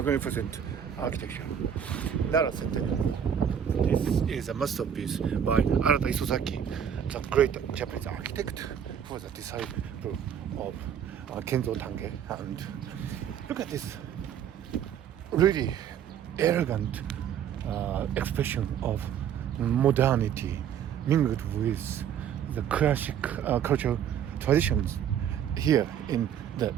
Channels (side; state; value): left; quieter; 8.7 dB